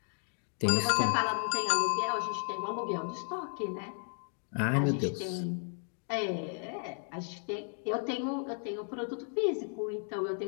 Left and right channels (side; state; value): right; silent; 55 dB below the other